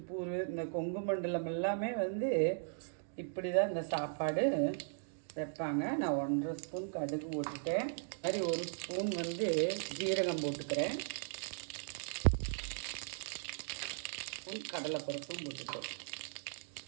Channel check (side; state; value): left; silent; digital silence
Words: இந்த கொங்கு மண்டலம் எல்லாமே இப்படி தான் இந்த சாப்பாடு வைப்பாங்க. நான் 1.5 ஸ்பூன் கடுகு போட்டுட்டேன். மாதிரி 1 ஸ்பூன் ஜீரகம் போட்டுக்கிறேன். கடலைப்பருப்பும் போட்டுட்டோம்.